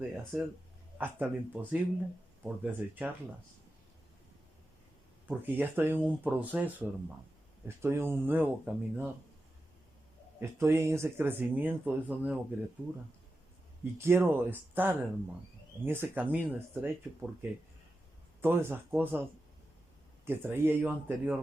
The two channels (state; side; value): normal; both; correlation 0.91